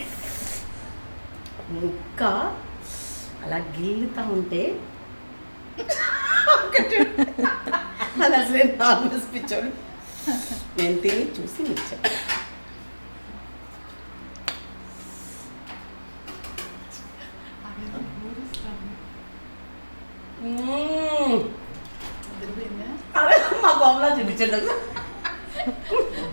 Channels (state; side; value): inverted; both; correlation -1.00